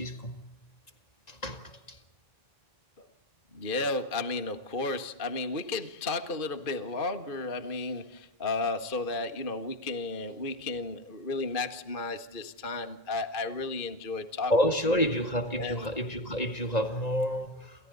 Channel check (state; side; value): late; right; 2.4 ms